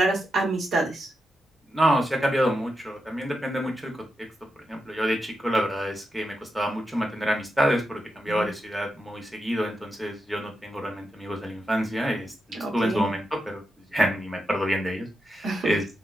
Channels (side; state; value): both; normal; correlation 0.87